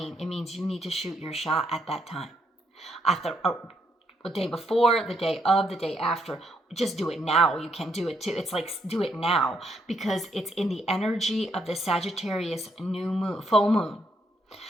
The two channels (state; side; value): normal; both; correlation 0.74